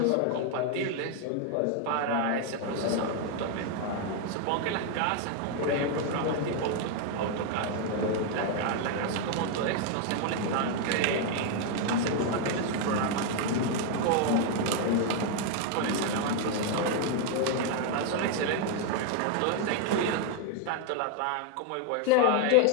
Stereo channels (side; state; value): both; different; correlation 0.01